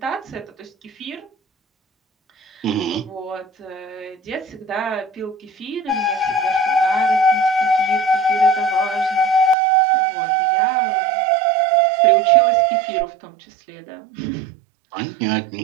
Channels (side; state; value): left; drops out; at 9.6 s